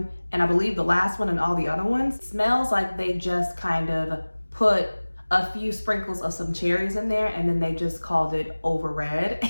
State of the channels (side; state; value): both; inverted; correlation -1.00